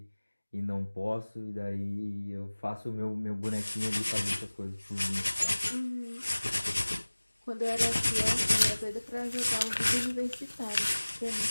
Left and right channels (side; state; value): both; inverted; correlation -1.00